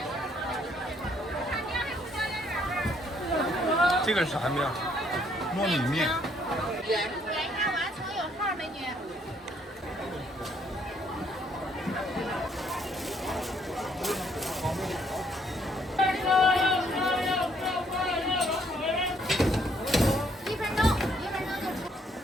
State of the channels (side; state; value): both; normal; correlation 0.67